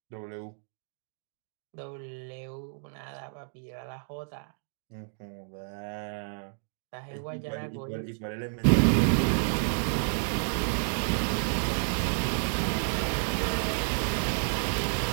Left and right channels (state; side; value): silent; left; 57 dB below the other